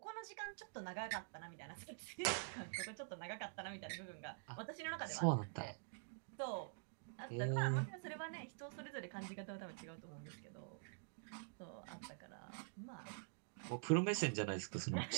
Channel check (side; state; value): left; silent; digital silence